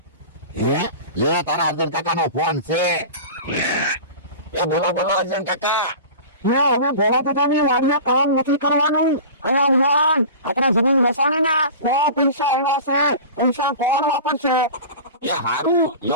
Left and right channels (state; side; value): inverted; both; correlation -0.35